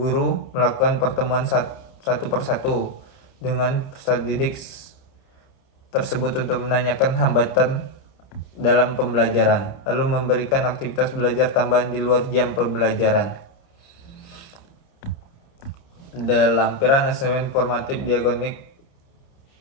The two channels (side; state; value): right; late; 30 ms